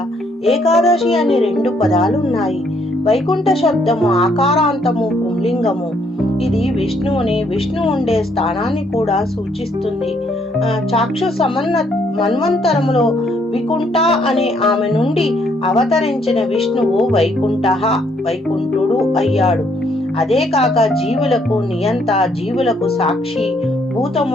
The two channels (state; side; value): normal; both; correlation 0.69